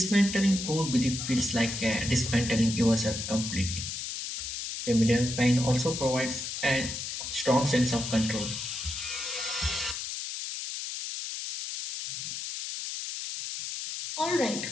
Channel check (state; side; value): noise; left; hiss, 5 dB below the sound